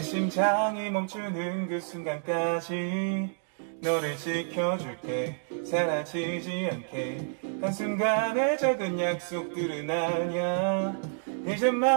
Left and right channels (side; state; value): left; silent; digital silence